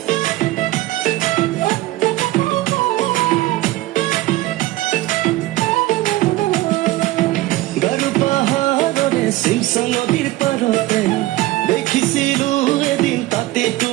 গাৰো পাহাৰৰে শিৱসা নদীৰ পাৰতে দেখিছিলো এদিন তাতে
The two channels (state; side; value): quieter; left; 17.6 dB